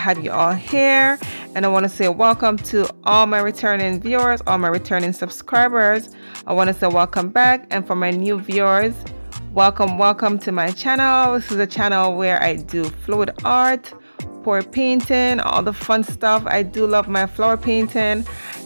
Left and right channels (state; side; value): inverted; both; correlation -1.00